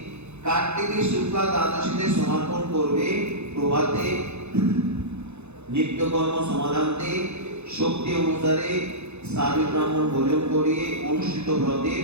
কার্তিকের শুক্লা দ্বাদশীতে সমর্পণ করবে। প্রভাতে নিত্যকর্ম সমাধান্তে শক্তি অনুসারে সাধু ব্রাহ্মণ ভোজন করিয়ে অনুষ্ঠিত ব্রতের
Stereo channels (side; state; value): left; late; 0.81 ms